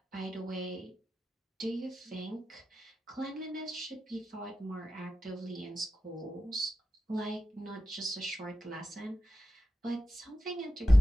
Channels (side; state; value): both; normal; correlation 0.92